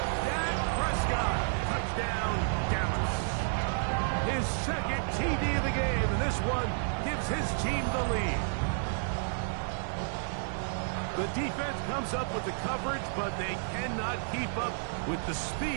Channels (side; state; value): left; silent; digital silence